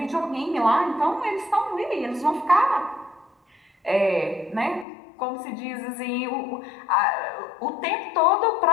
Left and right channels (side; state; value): right; drops out; at 4.9 s